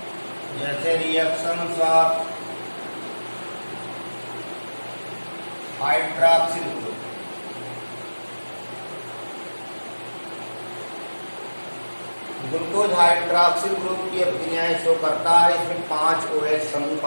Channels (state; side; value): inverted; both; correlation -1.00